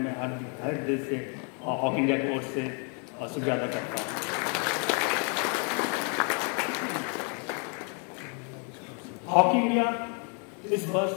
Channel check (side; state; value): right; quieter; 38.6 dB